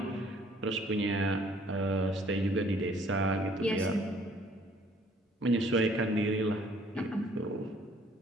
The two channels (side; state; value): both; normal; correlation 0.59